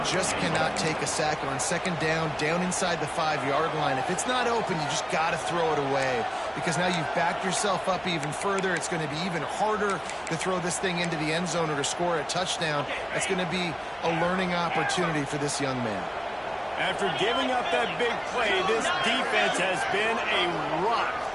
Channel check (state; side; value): identical; both; correlation 1.00